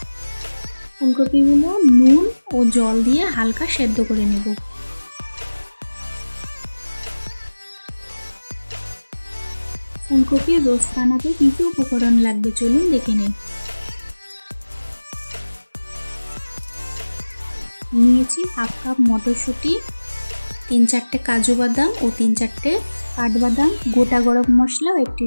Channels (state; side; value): inverted; both; correlation -1.00